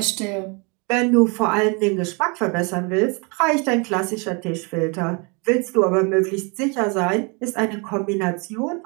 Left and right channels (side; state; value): left; quieter; 32.2 dB